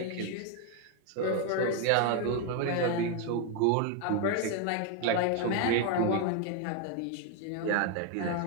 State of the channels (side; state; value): both; different; correlation 0.01